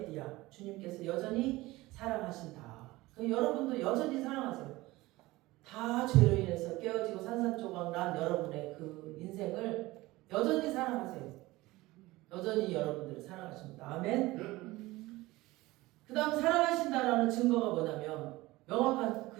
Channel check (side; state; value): left; quieter; 19.6 dB